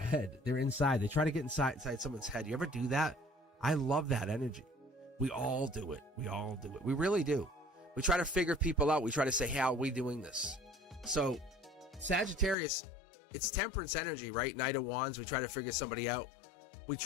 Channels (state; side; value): drops out; right; at 12.6 s